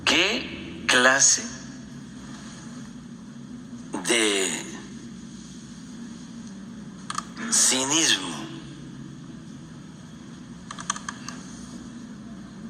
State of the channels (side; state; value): both; identical; correlation 1.00